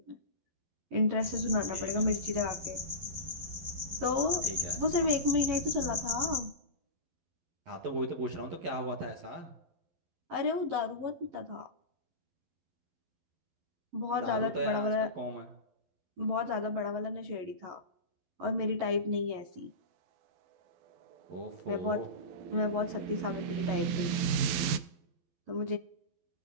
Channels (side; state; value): left; late; 12 ms